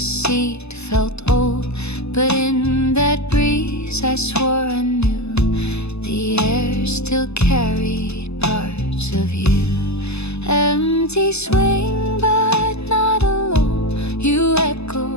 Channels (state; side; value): late; right; 0.80 ms